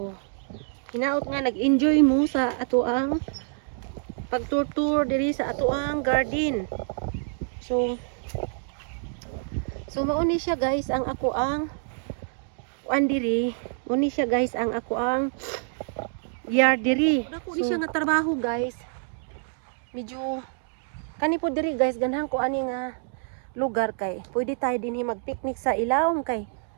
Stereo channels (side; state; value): left; silent; 60 dB below the other